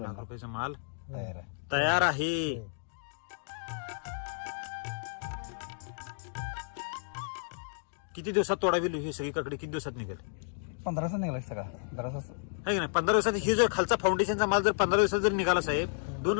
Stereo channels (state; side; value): silent; right; digital silence